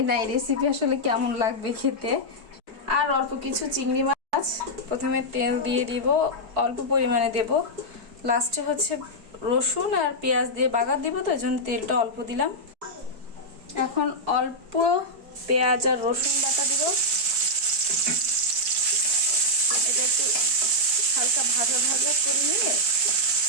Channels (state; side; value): late; left; 4.6 ms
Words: না এই রেসিপি আসলে কেমন লাগবে খেতে। আর অল্প কিছু চিংড়ি মাছ। প্রথমে তেল দিয়ে দিব, অল্প পরিমাণে দেব। লাস্টে হচ্ছে রসুন আর পেঁয়াজ দিয়ে বাগার দিব, তো এই জন্য তেলটা অল্প দিলাম। এখন অল্প পেঁয়াজ আর রসুন বাটা দিব। এটা একটু হালকা ভাজা ভাজা করে নিয়ে